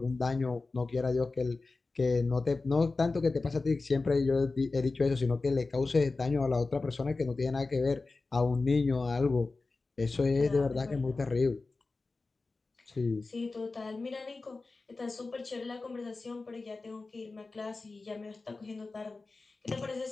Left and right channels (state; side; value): quieter; right; 3.7 dB